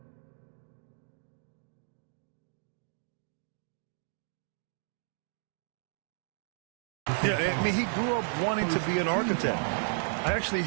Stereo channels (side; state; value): left; silent; digital silence